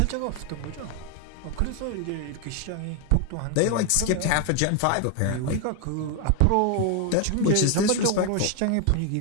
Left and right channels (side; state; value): both; different; correlation 0.01